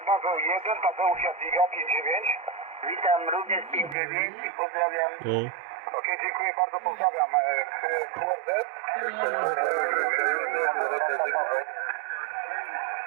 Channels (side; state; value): left; drops out; at 4.0 s